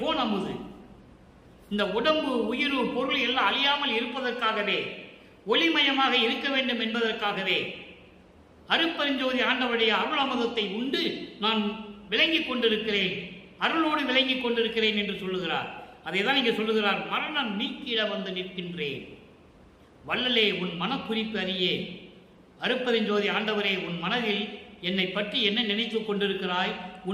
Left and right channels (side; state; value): both; identical; correlation 1.00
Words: அமுது. இந்த உடம்பு, உயிர், பொருள் எல்லாம் அழியாமல் இருப்பதற்காகவே, ஒளிமயமாக இருக்க வேண்டும் என்பதற்காகவே அருட்பெருஞ்சோதி ஆண்டவருடைய அருள் அமுதத்தை உண்டு நான் விளங்கிக் கொண்டிருக்கிறேன், அருளோடு விளங்கிக் கொண்டிருக்கிறேன் என்று சொல்லுகிறார். அதை தான் இங்கே சொல்லுகிறார். மரணம் நீக்கிட நிற்கின்றேன். வள்ளலே உன் மனக்குறிப்பு அறியே. அருட்பெருஞ்சோதி ஆண்டவரே, உன் மனதில் என்னை பற்றி என்ன நினைத்து கொண்டிருக்கிறாய்,